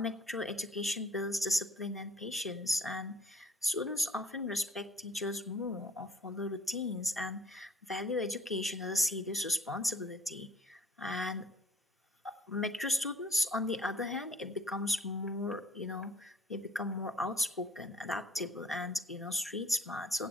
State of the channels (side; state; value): both; normal; correlation 0.55